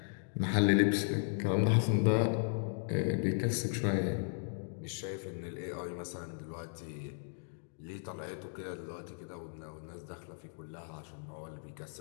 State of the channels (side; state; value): right; silent; digital silence